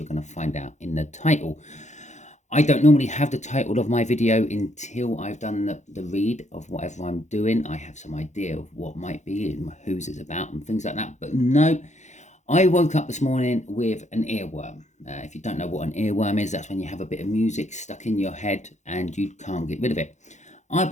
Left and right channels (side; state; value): right; late; 0.34 ms